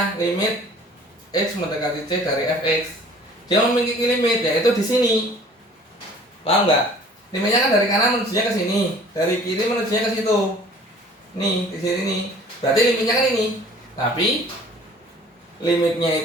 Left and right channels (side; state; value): both; normal; correlation 0.51